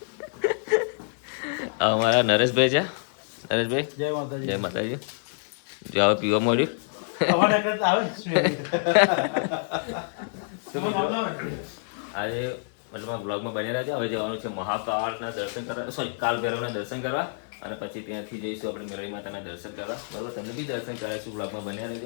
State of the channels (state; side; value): silent; right; digital silence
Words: અમારા નરેશભાઈ છે. નરેશભાઈ જય માતાજી. જો હવે પીવા મળ્યું. આજે મતલબ બ્લોગમાં બની રહ્યા છે. હવે જવાનું છે મહાકાળના દર્શન કરવા, સોરી કાલ ભૈરવના દર્શન કરવા, અને પછી ત્યાંથી જઈશું આપણે મેરળી માતાના દર્શન કરવા, બરાબર. તમને બી દર્શન કરાવીશું, બ્લોગમાં બન્યા